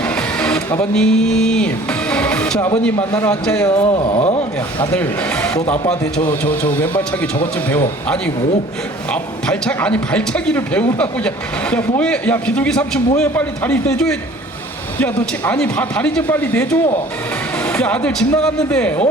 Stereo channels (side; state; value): both; normal; correlation 0.50